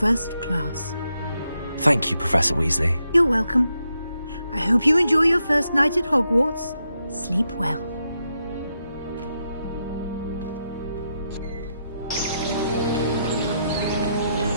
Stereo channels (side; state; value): both; inverted; correlation -0.83